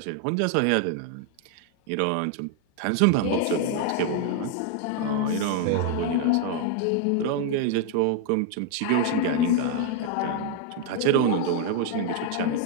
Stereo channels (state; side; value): different; both; correlation 0.00